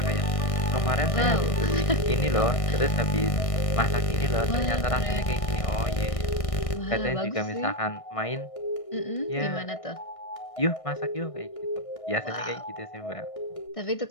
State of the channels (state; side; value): late; right; 1.6 ms